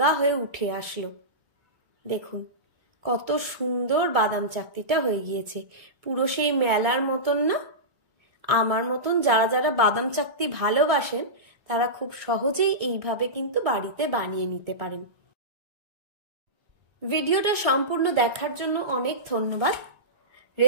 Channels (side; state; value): left; late; 1.7 ms